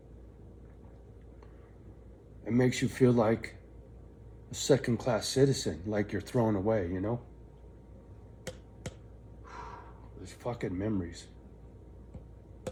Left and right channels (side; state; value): both; identical; correlation 1.00